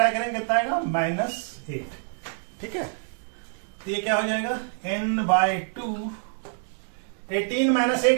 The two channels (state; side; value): silent; left; 61 dB below the other